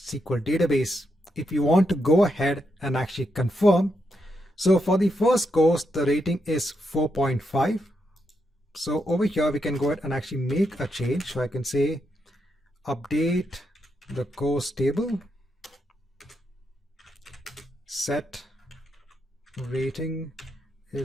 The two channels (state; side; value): normal; both; correlation 0.82